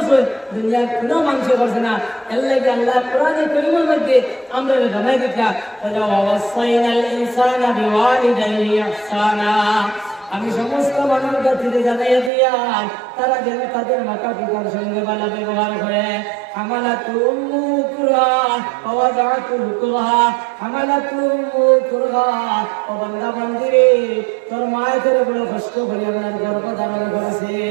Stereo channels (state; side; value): drops out; left; at 12.3 s